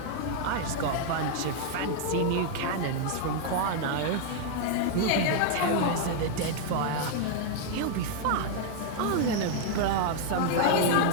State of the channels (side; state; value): both; different; correlation 0.00